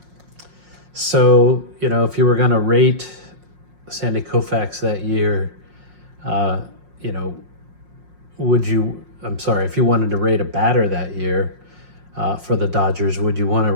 So, if you were going to rate Sandy Koufax that year, if you wanted to rate a batter that year for the Dodgers, would you want to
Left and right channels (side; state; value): left; late; 5.6 ms